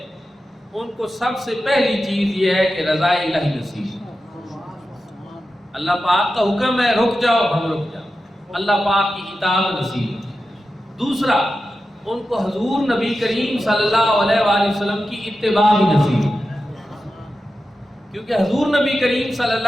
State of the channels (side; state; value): both; normal; correlation 0.92